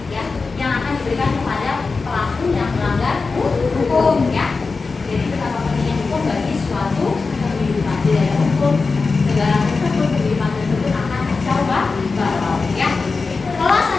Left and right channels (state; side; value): quieter; right; 4.3 dB